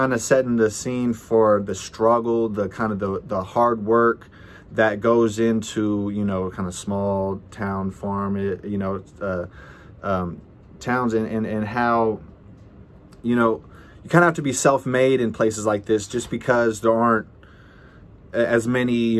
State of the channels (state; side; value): identical; both; correlation 1.00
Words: of setting the scene for the struggle, the kind of the hard work that goes into, you know, kind of small town farm, you know, towns, and how, you know, you kind of have to be self-made in places like this just because there aren't as many,